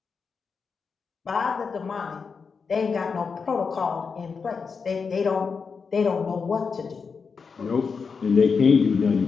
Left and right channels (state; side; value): quieter; right; 5.4 dB